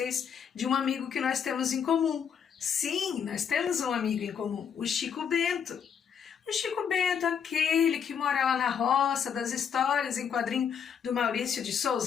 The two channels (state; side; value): quieter; right; 7.5 dB